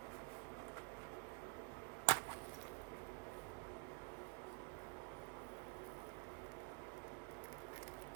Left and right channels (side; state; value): left; quieter; 32.9 dB